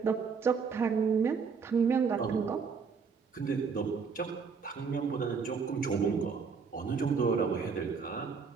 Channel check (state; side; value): quieter; left; 5.5 dB